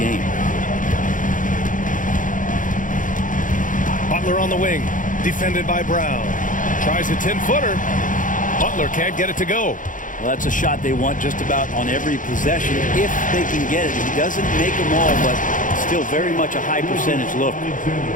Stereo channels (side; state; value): right; late; 0.38 ms